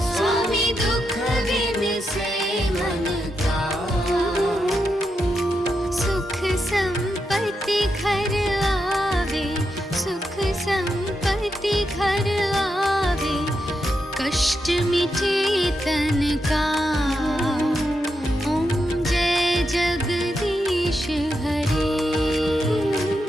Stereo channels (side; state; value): both; normal; correlation 0.85